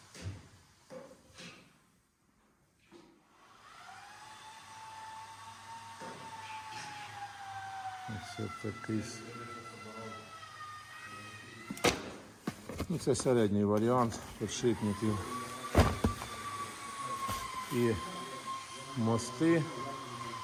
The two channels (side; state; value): both; identical; correlation 1.00